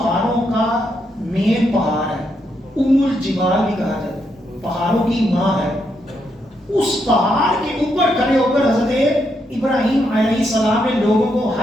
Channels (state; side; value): normal; both; correlation 0.79